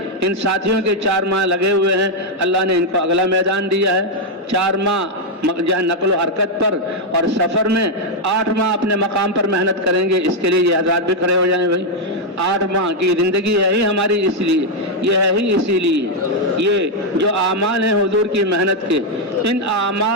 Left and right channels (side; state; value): both; normal; correlation 0.01